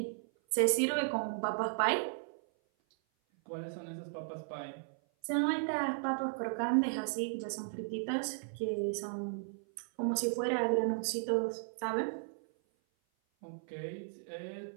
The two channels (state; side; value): silent; left; 54 dB below the other